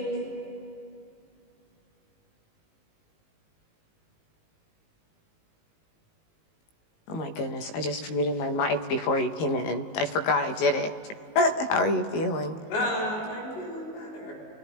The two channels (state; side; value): late; right; 19 ms